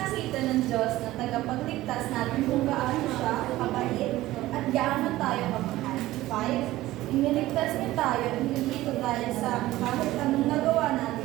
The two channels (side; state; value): left; quieter; 16.5 dB